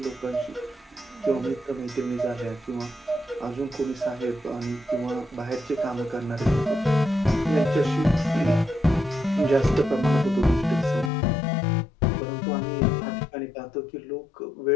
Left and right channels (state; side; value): drops out; right; at 11.1 s